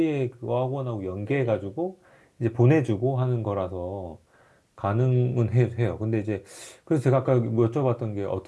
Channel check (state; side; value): identical; both; correlation 1.00